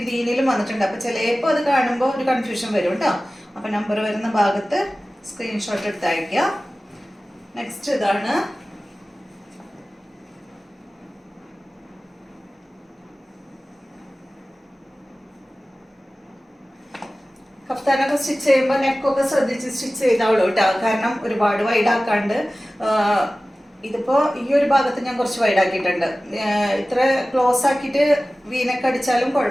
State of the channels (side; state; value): both; normal; correlation 0.97